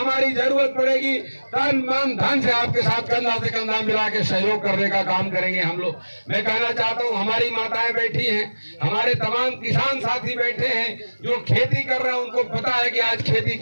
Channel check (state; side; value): inverted; both; correlation -1.00